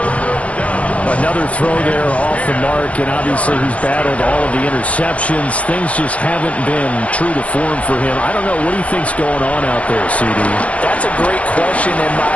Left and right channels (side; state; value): right; late; 0.065 ms